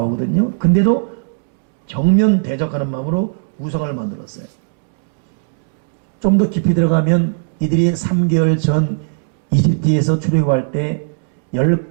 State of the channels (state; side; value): silent; left; digital silence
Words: 근데도 정면 대적하는 마음으로 우상을 만들었어요. 좀 더 깊이 들어가면 이들이 3개월 전 이집트에서 출애굽할 때